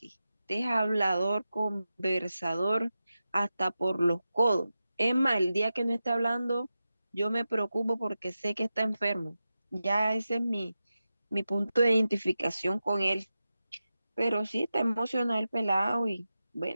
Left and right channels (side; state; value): both; inverted; correlation -0.92